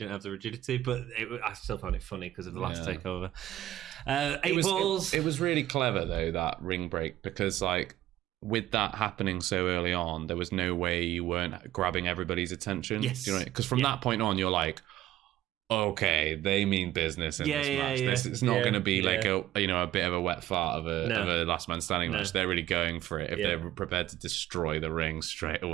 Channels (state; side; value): quieter; left; 13.7 dB